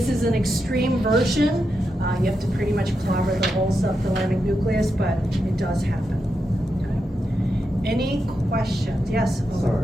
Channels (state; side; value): normal; both; correlation 0.86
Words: is an extreme version. You have to pretty much cover the whole subthalamic nucleus, but it does happen. Okay. Any questions? Yes? Sorry.